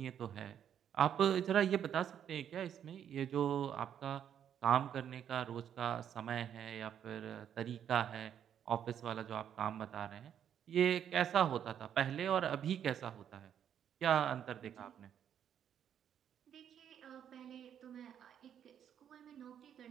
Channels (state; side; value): quieter; left; 9.2 dB